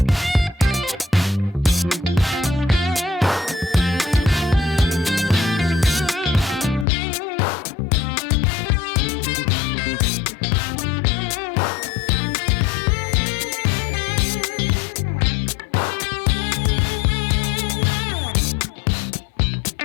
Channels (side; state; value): right; drops out; at 6.9 s